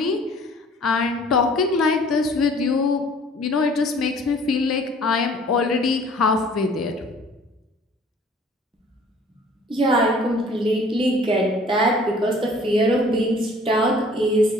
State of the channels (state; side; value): normal; both; correlation 0.53